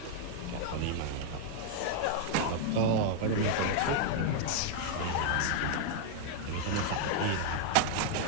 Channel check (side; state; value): both; different; correlation 0.00